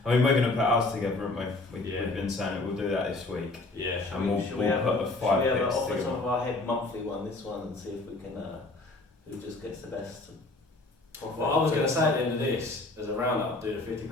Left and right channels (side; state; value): right; quieter; 3.1 dB